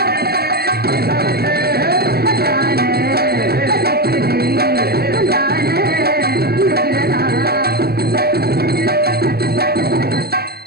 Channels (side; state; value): left; late; 0.46 ms